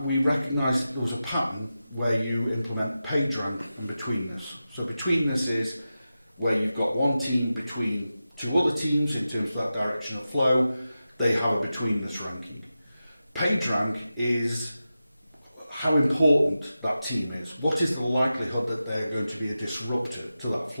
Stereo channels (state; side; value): inverted; both; correlation -0.92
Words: we recognised that there was a pattern where you implement PageRank and betweenness. So betweenness is where you've got one team between 2 other teams in terms of that direction of flow. They have a betweenness ranking. PageRank is how important that team is. What is the likelihood that they're going to be a disruptor to that